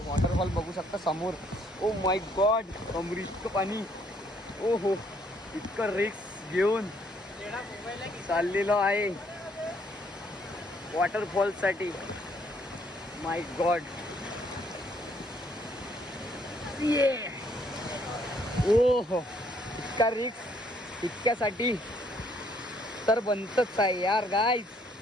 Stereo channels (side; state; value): both; normal; correlation 0.67